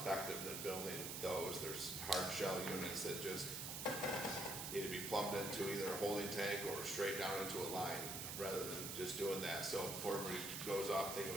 than building those. There's hard shell units that just need to be plumbed into either a holding tank or straight down into a line rather than just doing that. So before everybody goes off thinking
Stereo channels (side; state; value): right; noise; hiss, 4 dB below the sound